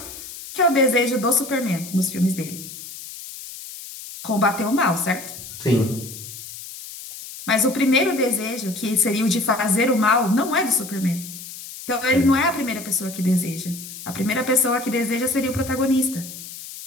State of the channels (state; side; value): noise; left; hiss, 13 dB below the sound